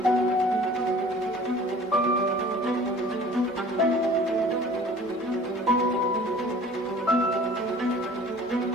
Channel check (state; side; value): normal; both; correlation 0.47